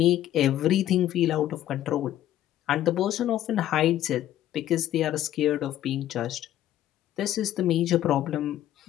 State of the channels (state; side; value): quieter; right; 12.5 dB